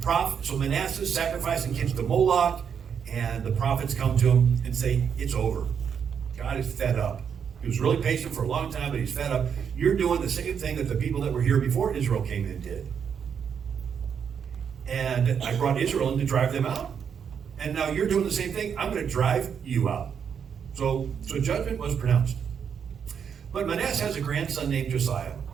Manasseh is sacrificing kids to Moloch, and the prophets come to him and say, it's over. God is fed up. He was really patient for a long time, but he's fed up. You're doing the same thing that the people that were here before Israel came in did. And I brought Israel in to drive them out. And now you're doing the same thing. I'm going to drive you out. So judgment was pronounced. But Manasseh has a grandson named Josiah.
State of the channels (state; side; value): quieter; left; 7.4 dB